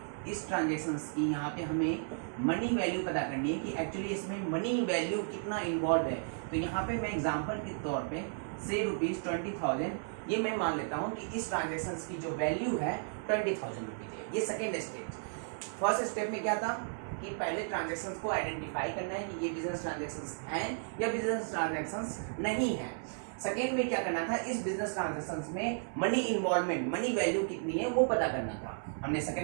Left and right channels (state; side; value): silent; left; 55 dB below the other